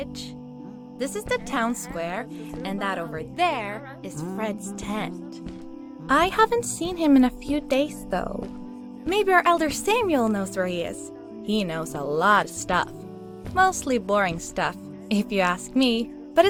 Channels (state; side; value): identical; both; correlation 1.00